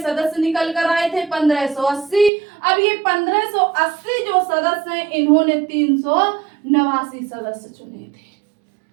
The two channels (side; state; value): left; drops out; at 2.3 s